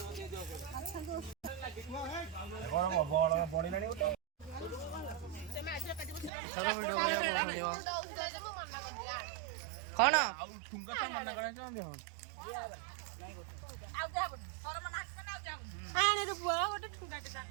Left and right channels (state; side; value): drops out; left; at 6.3 s